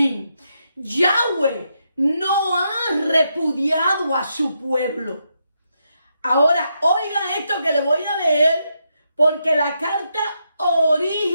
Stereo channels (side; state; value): both; inverted; correlation -0.81